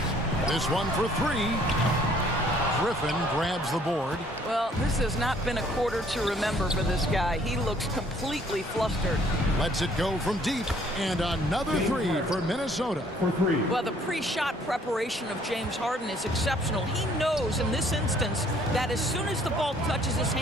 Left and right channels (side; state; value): both; normal; correlation 0.60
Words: This one for 3. Griffin grabs the board. Well, this has not been a quarter to remember for this guy. He looks completely flustered. Lets it go from deep, and another 3 for Minnesota. For 3. Well, the pre-shot preparation of James Harden is exceptional. He knows in this instance that as soon as the ball touches his